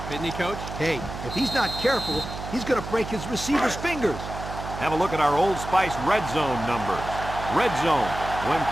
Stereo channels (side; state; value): right; noise; hum, 9 dB below the sound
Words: isn't he, Coach? Hey, if he's not careful, he's going to break his receiver's fingers. Have a look at our Old Spice red zone numbers. Red zone, when